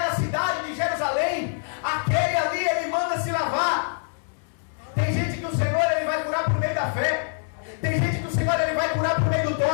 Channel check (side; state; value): right; silent; 62 dB below the other